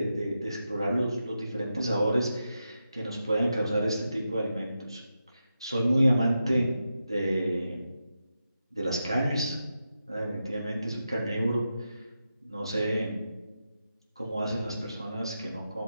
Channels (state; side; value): inverted; both; correlation -0.88